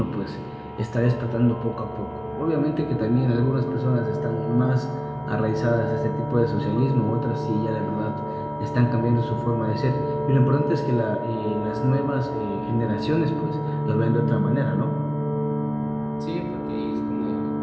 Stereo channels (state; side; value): identical; both; correlation 1.00